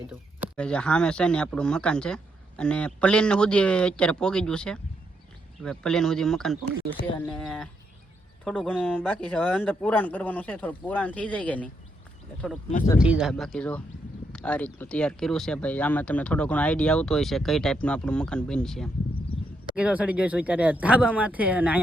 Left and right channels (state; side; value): normal; both; correlation 0.79